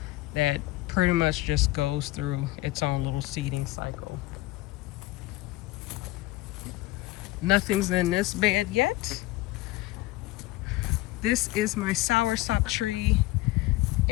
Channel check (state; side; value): quieter; right; 18.3 dB